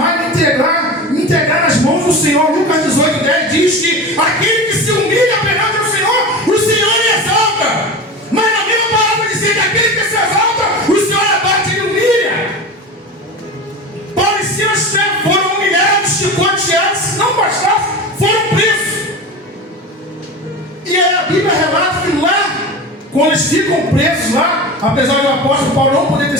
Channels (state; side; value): normal; both; correlation 0.29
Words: e me entregar nas mãos do Senhor. Lucas 18:10 diz que aquele que se humilha perante o Senhor lhe exalta. Mas na mesma palavra diz que aquele que se exalta, o Senhor abate e lhe humilha. Paulo e Silas foram humilhados, chicoteados, se não bastasse, foram presos. E aí a Bíblia relata que lá, quando eles ficam presos lá, apesar do apóstolo Paulo não poder ter